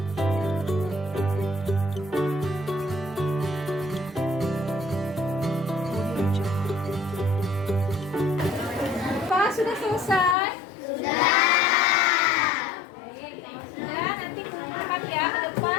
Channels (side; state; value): right; drops out; at 10.4 s